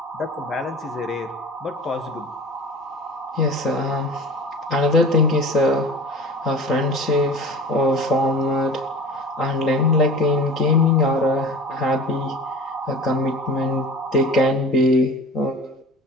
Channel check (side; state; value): both; normal; correlation 0.38